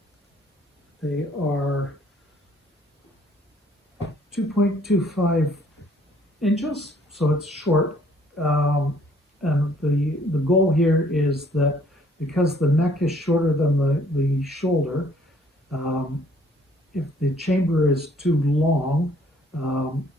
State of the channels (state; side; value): normal; both; correlation 0.61